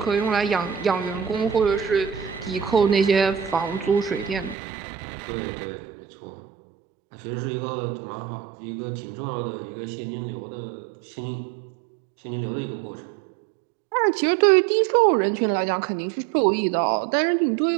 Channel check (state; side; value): drops out; left; at 4.5 s